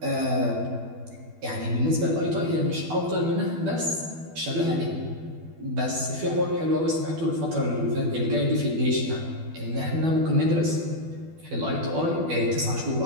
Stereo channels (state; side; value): late; left; 12 ms